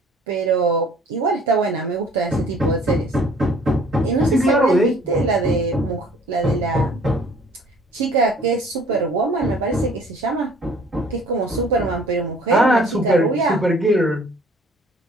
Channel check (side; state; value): both; normal; correlation 0.54